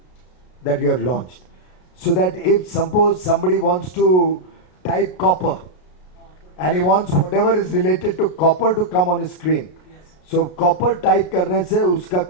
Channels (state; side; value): late; right; 33 ms